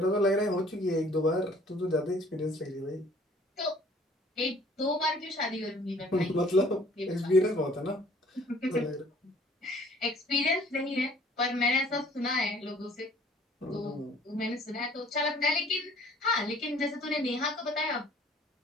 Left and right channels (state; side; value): normal; both; correlation 0.55